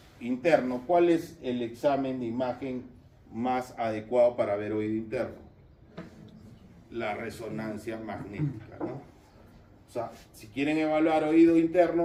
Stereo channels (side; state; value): both; identical; correlation 1.00